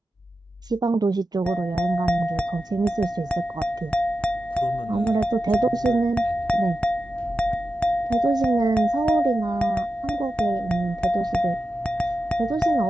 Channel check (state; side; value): normal; both; correlation 0.91